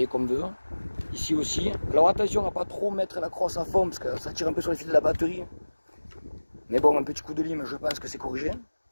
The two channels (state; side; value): inverted; both; correlation -1.00